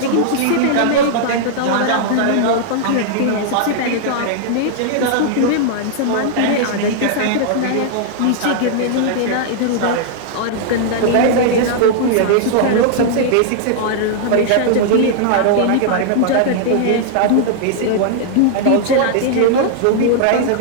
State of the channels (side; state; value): both; different; correlation -0.01